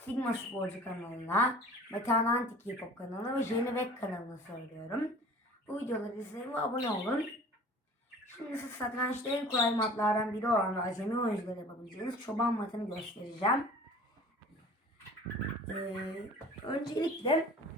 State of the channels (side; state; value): both; normal; correlation 0.45